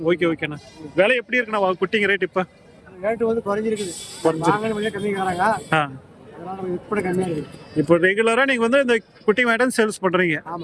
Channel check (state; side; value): identical; both; correlation 1.00